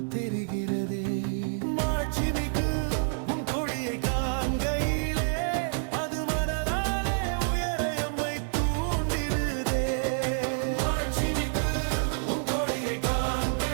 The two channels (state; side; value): silent; left; digital silence